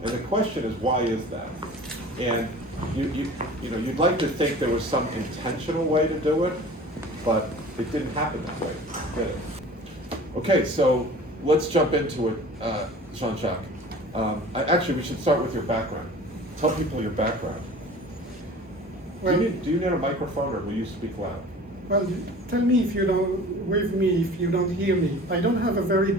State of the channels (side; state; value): both; normal; correlation 0.43